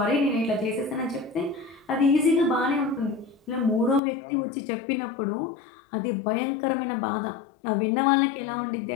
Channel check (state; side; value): drops out; right; at 4.0 s